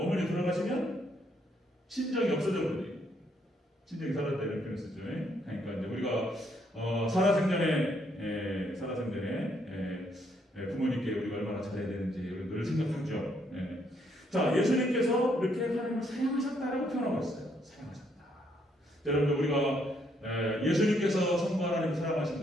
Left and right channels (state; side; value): normal; both; correlation 0.72